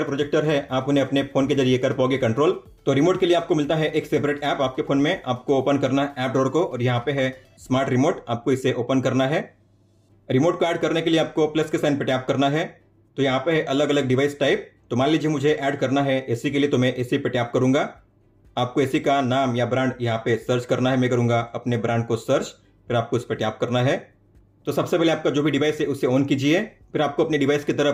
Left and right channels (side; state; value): both; identical; correlation 1.00